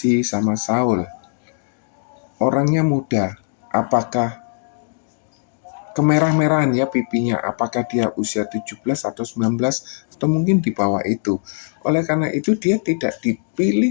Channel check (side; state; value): right; silent; digital silence